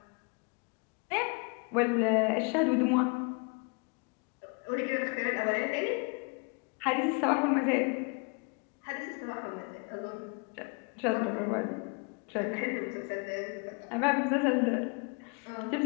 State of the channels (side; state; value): right; quieter; 34.3 dB